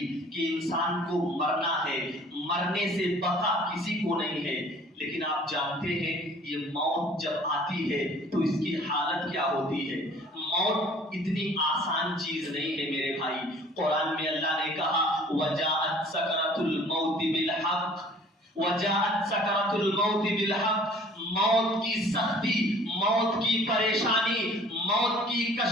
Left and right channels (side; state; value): both; normal; correlation 0.52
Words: کہ انسان کو مرنا ہے, مرنے سے بقا کسی کو نہیں ہے. لیکن آپ جانتے ہیں یہ موت جب آتی ہے تو اس کی حالت کیا ہوتی ہے. موت اتنی آسان چیز نہیں ہے میرے بھائی. قرآن میں اللہ نے کہا وَجَاءَتْ سَكْرَةُ الْمَوْتِ بِالْحَقِّ, وَجَاءَتْ سَكْرَةُ الْمَوْتِ بِالْحَقِّ, موت کی سختی, موت کی پریشانی, موت کی